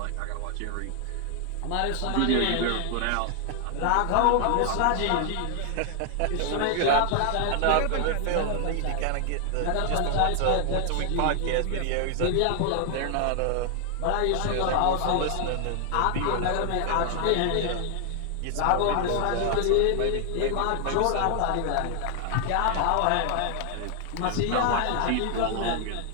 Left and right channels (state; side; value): different; both; correlation 0.00